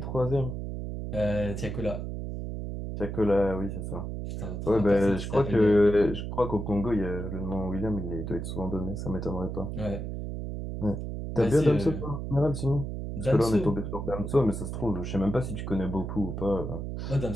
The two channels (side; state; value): right; noise; hum, 5 dB below the sound